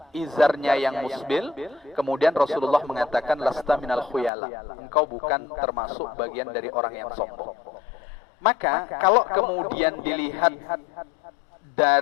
izarnya yang musbil, kemudian Rasulullah mengatakan lasta minal khuyala, engkau bukan termasuk bagian dari orang yang sombong. Maka kalau kemudian dilihat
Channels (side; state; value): right; drops out; at 4.3 s